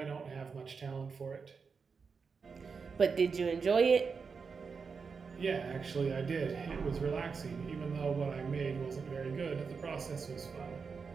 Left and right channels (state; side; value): quieter; left; 5.4 dB